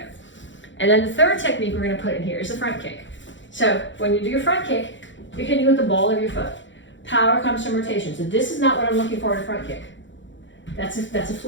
And then the third technique we're gonna put in here is the front kick. So when you do your front kick, you're hitting with the ball of your foot. Power comes from rotation. So this is not what I'm looking for in a front kick. That's a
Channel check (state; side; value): late; right; 0.54 ms